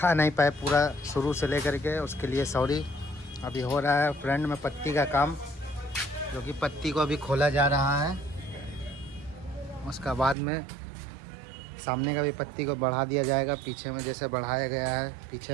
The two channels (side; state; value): left; drops out; at 10.4 s